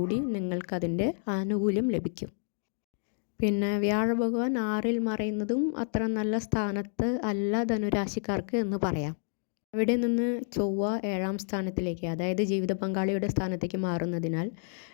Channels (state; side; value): silent; right; 58 dB below the other